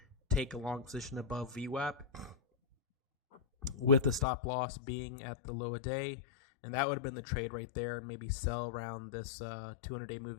take a long position above VWAP with the stop loss being at the low of day. And that would have been the trade right there, and maybe sell around this 200-day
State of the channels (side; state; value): right; drops out; at 4.2 s